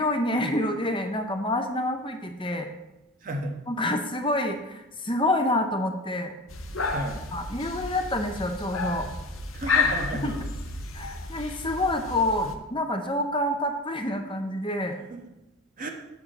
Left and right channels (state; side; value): normal; both; correlation 0.32